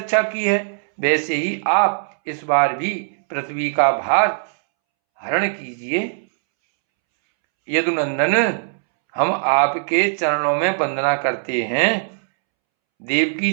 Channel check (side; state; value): left; silent; 66 dB below the other